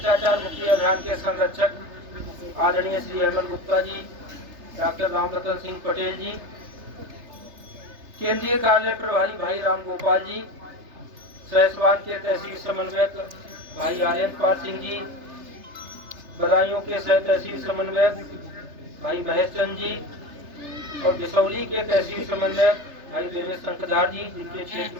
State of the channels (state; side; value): late; left; 3.3 ms